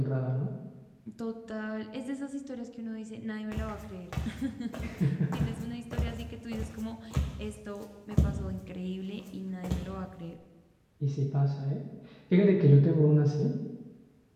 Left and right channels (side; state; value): both; identical; correlation 1.00